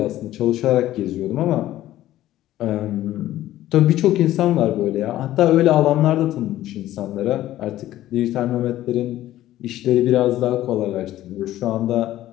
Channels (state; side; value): quieter; right; 14.1 dB